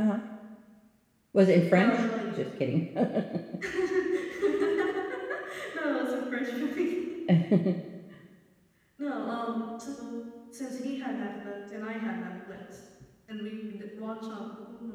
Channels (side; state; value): both; identical; correlation 1.00